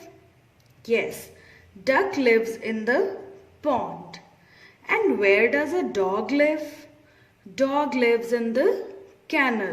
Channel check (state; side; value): identical; both; correlation 1.00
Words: Yes, duck lives in the pond. And where does a dog live? Dog lives in the